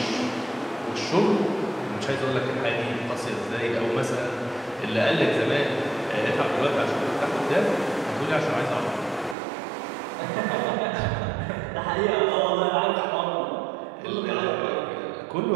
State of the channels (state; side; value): drops out; left; at 9.3 s